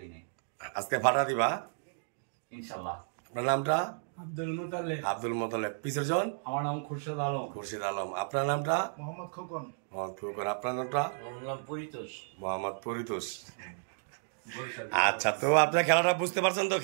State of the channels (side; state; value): left; silent; digital silence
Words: নাই। আজকে ফাটা দিবা ইনশাল্লাহ। আপনার নামটা? আব্দুল মোতালেব। আব্দুল মোতালেব। পিছের জন? আমার নাম খুরশেদ আলম। খুরশিদ আলম। আপনার নামটা? মোহাম্মদ খোকন। মোহাম্মদ খোকন। আপনার নামটা? আমার নাম পরিতোষ। মোহাম্মদ পরিতোষ। আচ্ছা, তো আপনার খেলাটা বুঝতে পারছেন তো?